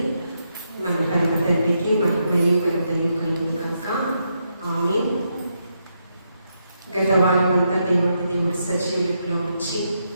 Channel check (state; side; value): inverted; both; correlation -0.81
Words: మన పరమ తండ్రికి మహిమయు ఘనతయు కలుగును గాక. ఆమేన్. గత వారమంతా దేవుడు సజీవులో ఉంచి